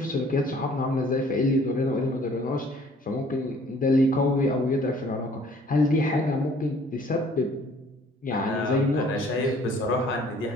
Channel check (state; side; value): normal; both; correlation 0.56